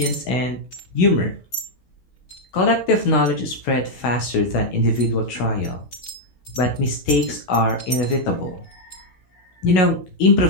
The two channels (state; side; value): late; right; 16 ms